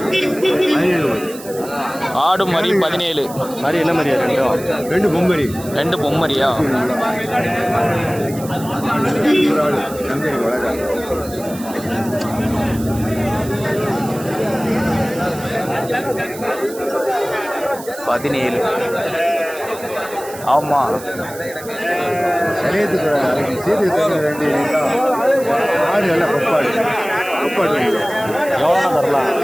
ஆடு மரி 17. மாதிரி என்ன மாதிரியா? ரெண்டு பொம்மரி. ரெண்டு பொம்மரியா? பதினேழு. ஆமாம், சரியத்துக்கு சேர்த்து ரெண்டு ஆடு நல்லா கொப்பாடு. கொப்பாடு எவ்வளோனா தரலாம்?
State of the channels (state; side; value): noise; right; hiss, 16 dB below the sound